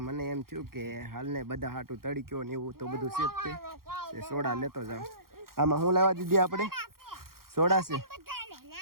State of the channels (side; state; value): left; late; 0.92 ms